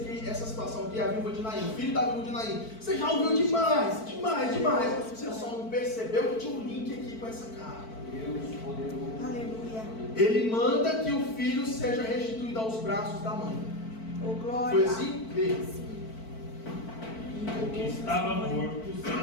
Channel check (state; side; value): late; right; 4.5 ms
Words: situação aqui, a viúva de Naim, o filho da viúva de Naim? Você já ouviu demais. Você só não percebeu que tinha um link aqui com essa carta. Deus poderoso. Aleluia. Ele manda que o filho seja restituído aos braços da mãe. Oh, glória. Foi assim? Vê. O que estava morto